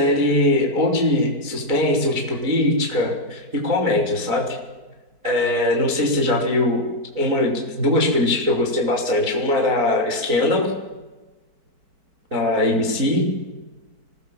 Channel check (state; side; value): late; left; 4.5 ms